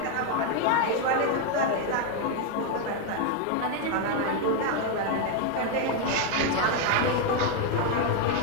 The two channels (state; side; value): different; both; correlation 0.01